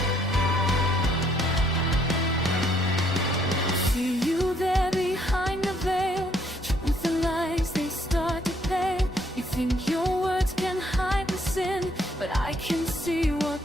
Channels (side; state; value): both; normal; correlation 0.68